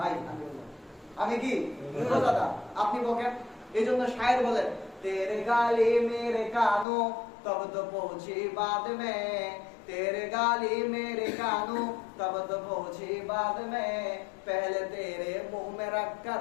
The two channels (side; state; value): right; drops out; at 6.9 s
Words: আমি কি রোজাদার, আপনি বকেন। এইজন্য শায়ের বলেন, তেরে গালি মেরে কানো তব তো পৌঁছি বাদ মে, तेरे गाली मेरे कानों तब तो पहुंची बाद में, पहले तेरे मुंह में रख कर